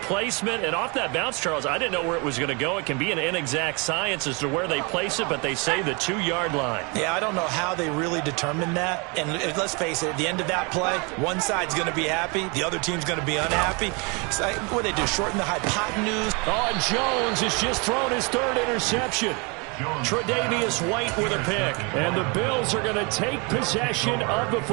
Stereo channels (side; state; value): left; quieter; 31.1 dB